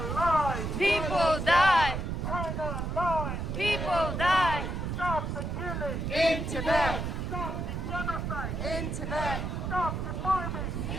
lies! People die! China lies! People die! Stop the killing! In Tibet. Stop the genocide! In Tibet! Stop the bombing!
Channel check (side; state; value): right; noise; rumble, 3 dB below the sound